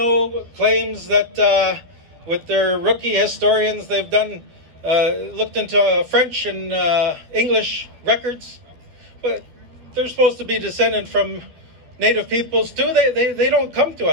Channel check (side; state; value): left; late; 12 ms